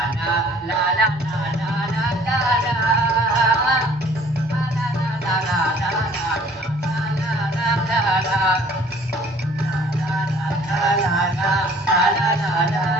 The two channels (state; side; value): normal; both; correlation 0.54